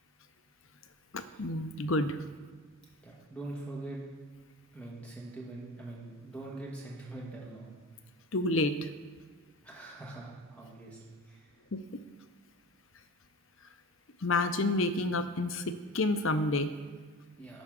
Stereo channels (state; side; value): normal; both; correlation 0.35